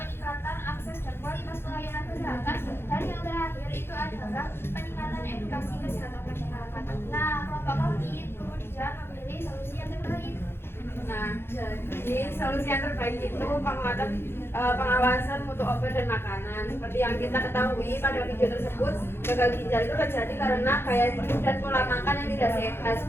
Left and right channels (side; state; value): right; late; 0.11 ms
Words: akses dan kualitas pelayanan kesehatan. Dan yang terakhir itu adalah peningkatan edukasi kesehatan masyarakat. Nah, kelompok kami kemudian memilih solusi yang terbaik. Nah, jadi solusi yang terbaik itu penguatan pengawasan mutu obat dan makanan. Seperti yang kita ketahui pada video tersebut, gagal ginjal itu terjadi karena gaya hidup dan pola makan yang tidak sehat,